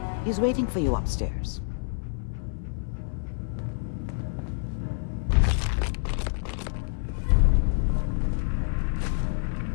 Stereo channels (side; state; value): right; silent; 58 dB below the other